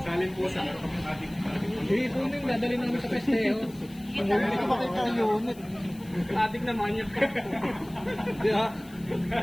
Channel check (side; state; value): left; noise; hiss, 23 dB below the sound